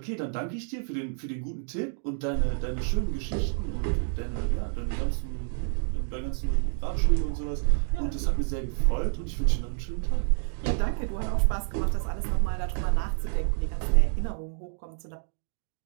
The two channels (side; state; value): left; silent; digital silence